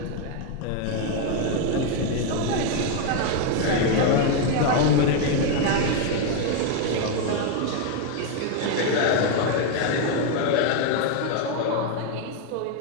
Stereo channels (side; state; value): both; different; correlation 0.01